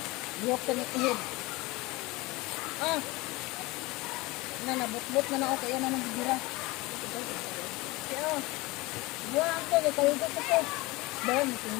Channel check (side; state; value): right; quieter; 22.5 dB